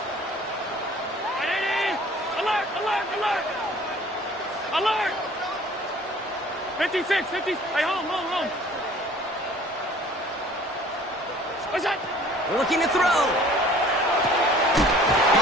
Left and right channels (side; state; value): both; normal; correlation 0.51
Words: Alert. 56. Hey, home. What's that? Looking to throw.